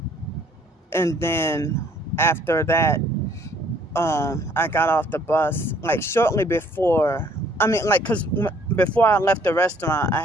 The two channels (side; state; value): both; normal; correlation 0.61